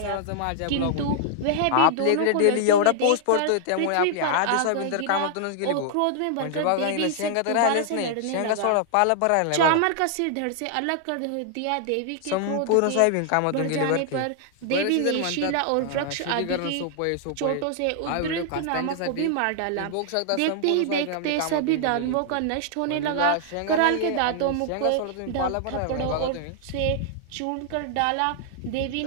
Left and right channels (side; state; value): both; different; correlation -0.01